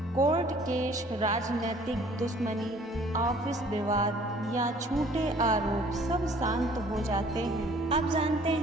कोर्ट केस, राजनीतिक दुश्मनी, ऑफिस विवाद या झूठे आरोप सब शांत हो जाते हैं। अब जानते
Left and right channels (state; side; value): normal; both; correlation 0.55